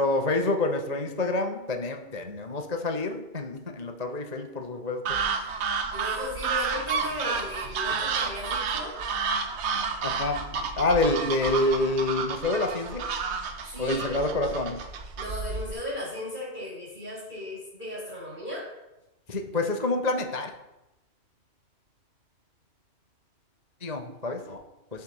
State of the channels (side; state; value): left; late; 3.1 ms